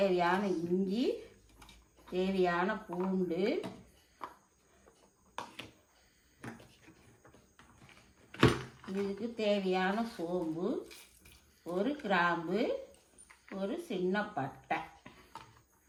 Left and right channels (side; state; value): both; identical; correlation 1.00